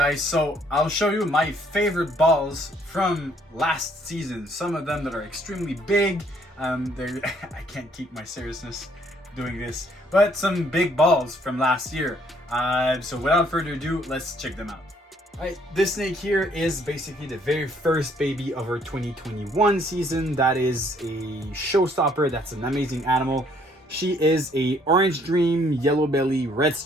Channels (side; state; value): both; normal; correlation 0.65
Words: so I'll show you my favorite balls from last season. Some of them that are extremely big. I can't keep my seriousness doing this, but some big balls from last year. So without further ado, let's check them out. Alright, this snake here is basically the very first baby of our 2021 season. That is a showstopper. That's an amazing animal. She is a orange dream, yellow belly, red